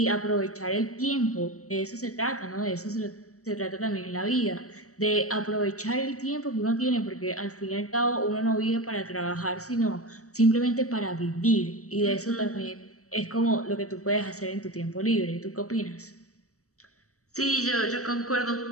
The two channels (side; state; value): right; late; 0.65 ms